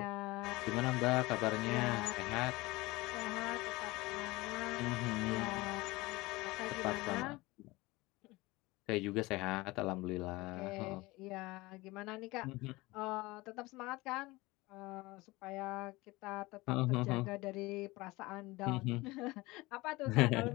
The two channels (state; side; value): quieter; right; 21.5 dB